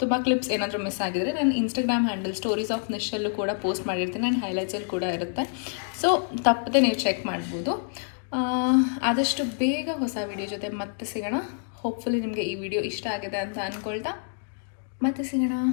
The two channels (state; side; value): silent; right; 60 dB below the other